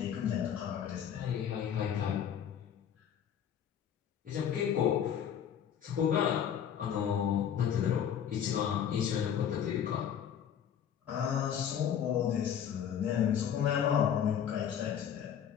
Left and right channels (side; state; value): right; quieter; 8.9 dB